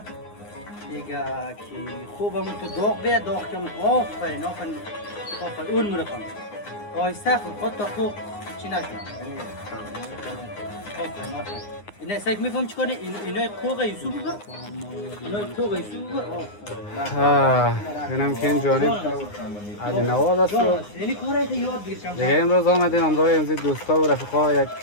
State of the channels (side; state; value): right; late; 9.7 ms